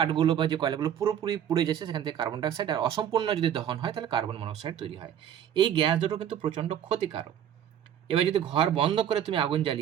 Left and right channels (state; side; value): quieter; left; 9.7 dB